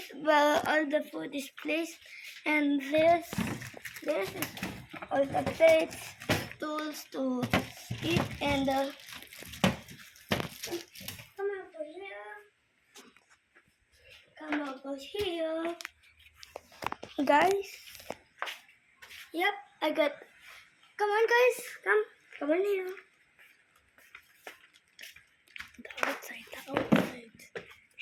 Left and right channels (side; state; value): both; identical; correlation 1.00